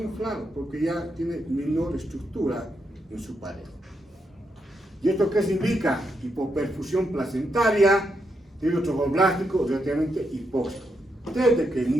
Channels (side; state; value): both; normal; correlation 0.82